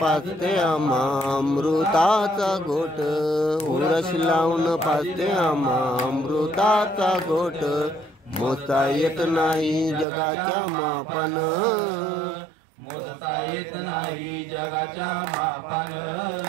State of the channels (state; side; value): drops out; left; at 10.1 s